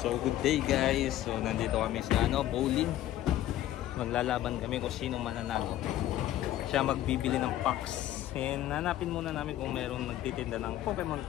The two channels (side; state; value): right; quieter; 13.5 dB